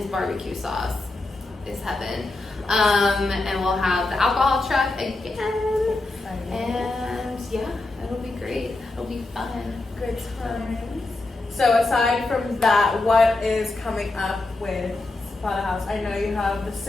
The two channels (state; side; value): quieter; right; 3.1 dB